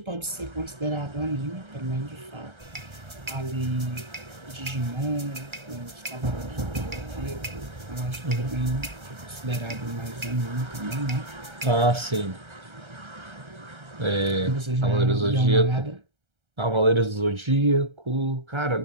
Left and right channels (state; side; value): late; left; 1.3 ms